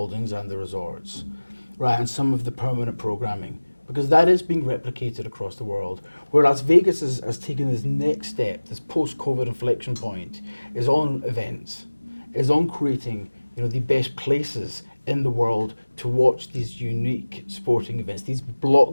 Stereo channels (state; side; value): inverted; both; correlation -1.00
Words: and the resorts, right, and some of the permanent programming, because that is being replicated across the world. Where Las Vegas has taken this next step, this post-COVID inflection point, is on events, is on creating, the best places in the world to watch these unique sporting events, these